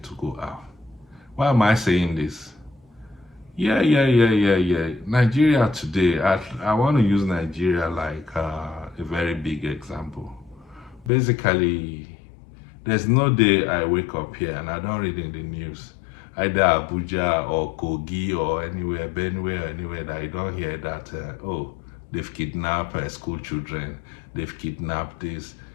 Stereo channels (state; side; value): drops out; right; at 11.1 s